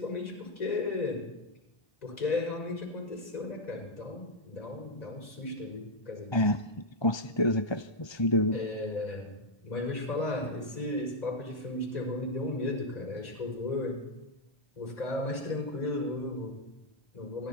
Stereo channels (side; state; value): right; late; 1.3 ms